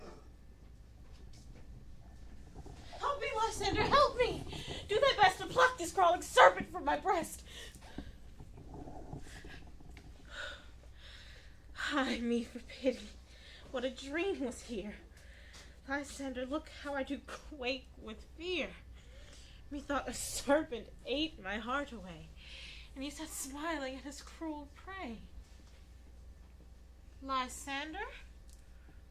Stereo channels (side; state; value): both; identical; correlation 1.00